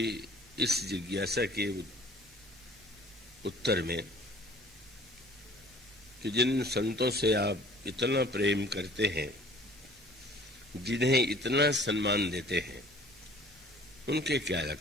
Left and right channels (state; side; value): normal; both; correlation 0.51